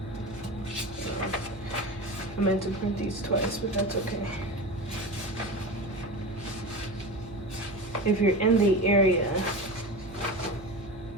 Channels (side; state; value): right; noise; hum, 16 dB below the sound